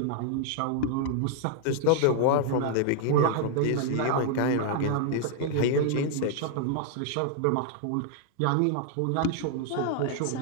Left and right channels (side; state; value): both; different; correlation 0.00